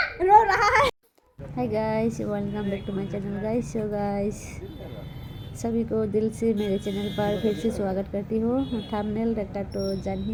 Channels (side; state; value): both; identical; correlation 1.00